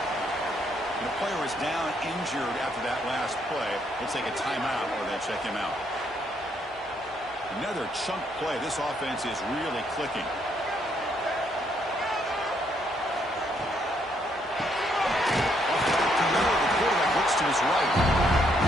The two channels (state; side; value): normal; both; correlation 0.72